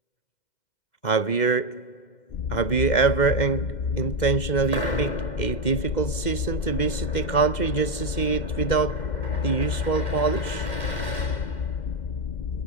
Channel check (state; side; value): late; right; 2.1 ms